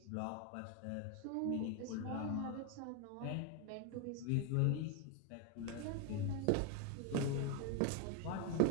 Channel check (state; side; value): different; both; correlation 0.01